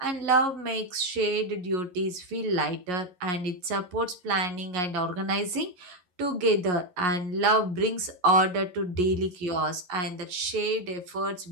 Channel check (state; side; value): late; left; 11 ms